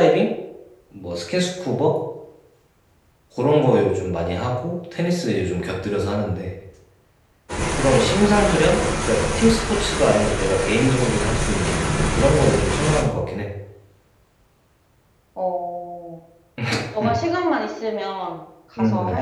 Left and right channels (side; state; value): both; identical; correlation 1.00